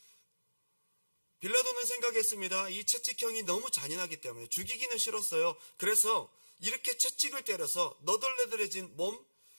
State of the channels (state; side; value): inverted; both; correlation -1.00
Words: 빌라도는 생각했습니다. 이 채찍형이 너무 잔인하기 때문에 죽이기는 싫었어요. 그래서 이렇게 채찍을 때려서 너덜너덜해진 몸,